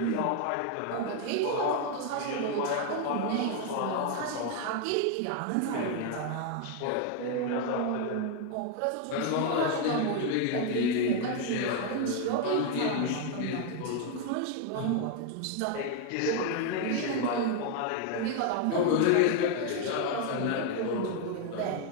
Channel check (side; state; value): both; different; correlation 0.01